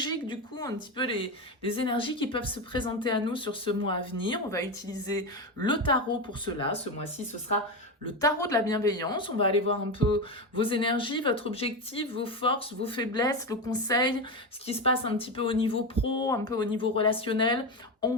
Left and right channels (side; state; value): both; normal; correlation 0.16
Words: du coup, un petit peu les énergies qui peuvent se présenter à nous sur ce mois à venir. On va utiliser le tarot pour cela. Ce mois-ci, ce sera le tarot de la bienveillance. On va aller voir un peu vos énergies, votre objectif, vos forces, vos faiblesses, le conseil, ce qui se passe un petit peu au niveau pro, un peu au niveau relationnel en